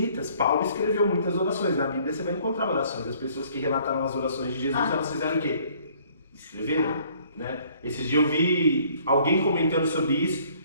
Paulo escreveu muitas orações. Na Bíblia você vai encontrar orações. As pessoas que relataram as orações de Jesus, elas fizeram o quê? Escreveram, né? Esses dias eu vi alguém comentando sobre isso,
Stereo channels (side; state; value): both; inverted; correlation -0.59